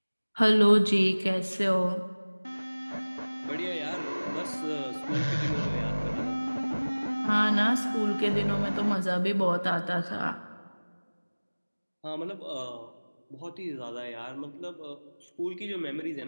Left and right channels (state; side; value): inverted; both; correlation -1.00